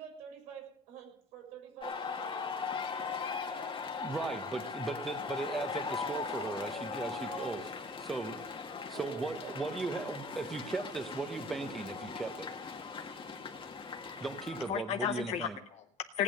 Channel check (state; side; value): normal; both; correlation 0.46